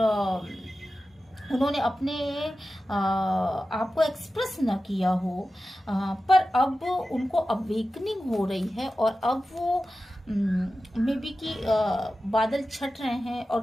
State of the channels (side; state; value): both; normal; correlation 0.94